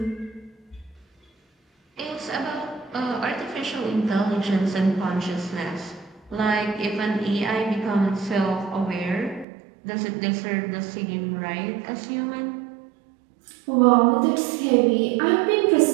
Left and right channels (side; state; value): left; drops out; at 9.5 s